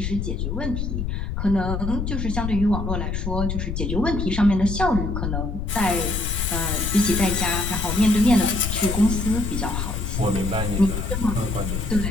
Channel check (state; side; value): noise; left; rumble, 2 dB below the sound